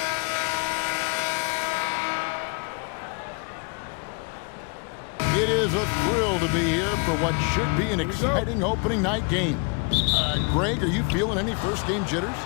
a thrill to be here for what should be an exciting opening night game. Greg, are you feeling any first game jitters?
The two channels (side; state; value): right; quieter; 33.8 dB